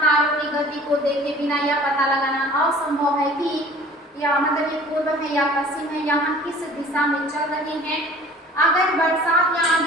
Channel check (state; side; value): normal; both; correlation 0.47